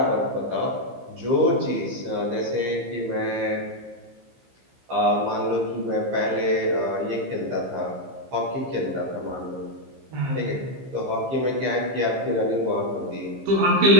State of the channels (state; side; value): late; left; 15 ms